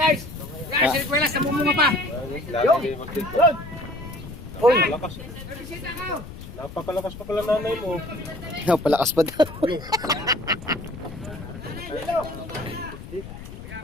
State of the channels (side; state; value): left; noise; rumble, 13 dB below the sound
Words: Guys, request na mumunga pa! Uy! Napakalakas pa pala nanay mo. Palakas pa daw.